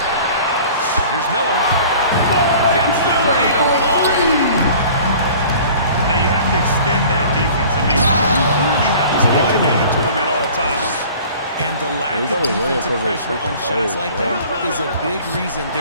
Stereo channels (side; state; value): both; inverted; correlation -0.46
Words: Here's Miller. Gets the three to fall. Now you have to extend that defense. I mean, you really have to stay connected to him at all times. And the lack he's of only winning defensive because of pressure on freaking shots players, like bro. that is a big reason